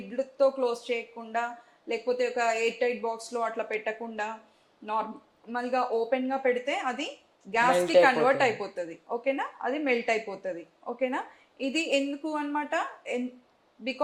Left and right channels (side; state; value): both; identical; correlation 1.00